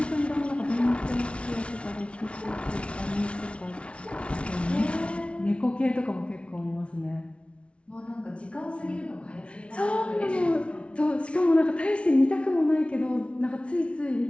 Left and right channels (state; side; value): late; right; 0.060 ms